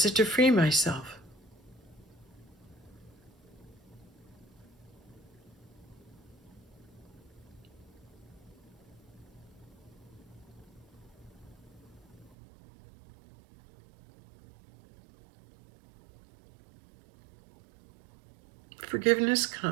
it to free myself? Forgiveness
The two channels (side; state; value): left; drops out; at 12.4 s